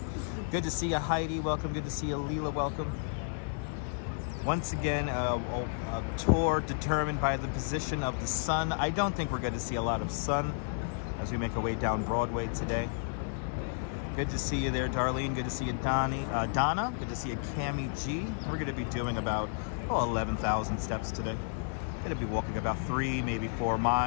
Good to see you, Heidi. Welcome. Good to see you, Leela. Welcome. Once again, a tour determined by the position of the sun. I don't think we're going to see a lot of sun as we make our way down Broadway today. Good to see you there, Darlene. Good to see you, Donna. Good to see you, Cami G. We're going to be doing about 11,000 steps today. Going to be walking about 3, maybe 4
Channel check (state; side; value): silent; right; 56 dB below the other